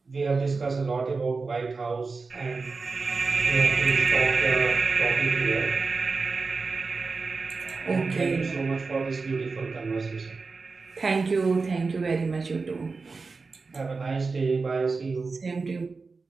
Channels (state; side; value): quieter; left; 4.3 dB